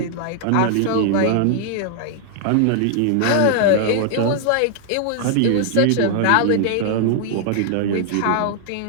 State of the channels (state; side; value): different; both; correlation -0.01